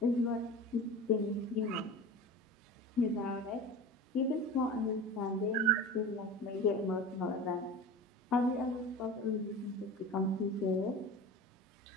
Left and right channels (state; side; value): normal; both; correlation 0.33